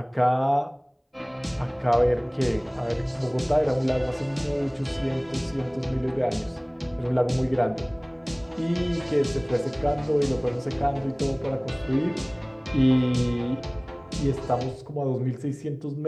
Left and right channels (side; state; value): both; identical; correlation 1.00